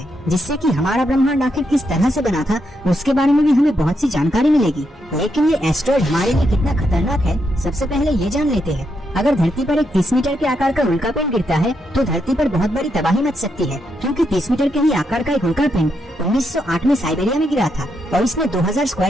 जिससे कि हमारा ब्रह्मांड आखिर किस तरह से बना था उसके बारे में भी हमें बहुत सी जानकारी मिलेगी। लेकिन ये एस्टेरॉयड हमारे लिए कितना खतरनाक है, सबसे पहले ये जान लेते हैं। अगर धरती पर एक 30 मीटर के आकार का उल्कापिंड गिरता है तो धरती पर बहुत बड़ी तबाही मच सकती है, क्योंकि 30 मीटर के ही आकार का एक उल्कापिंड 1908 में साइबेरिया में गिरा था और इसने 2000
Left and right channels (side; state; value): both; normal; correlation 0.81